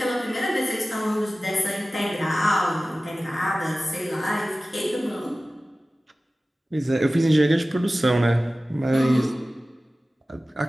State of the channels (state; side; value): normal; both; correlation 0.96